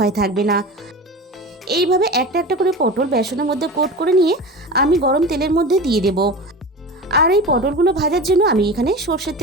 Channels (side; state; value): both; normal; correlation 0.30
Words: থাকবে না। এইভাবে একটা একটা করে পটল বেসনের মধ্যে কোট করে নিয়ে আমি গরম তেলের মধ্যে দিয়ে দেব। আর এই পটলগুলো ভাজার জন্য আমি এখানে সর্ষের